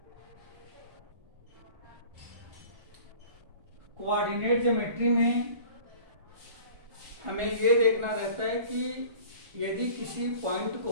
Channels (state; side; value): late; left; 1.5 ms